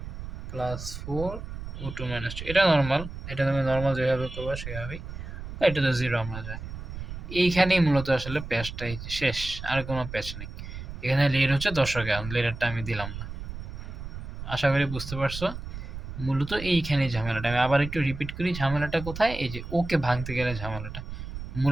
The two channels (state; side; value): noise; right; rumble, 9 dB below the sound